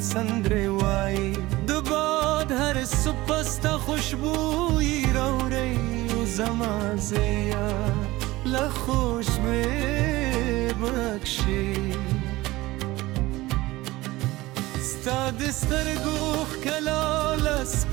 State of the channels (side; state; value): left; quieter; 19.0 dB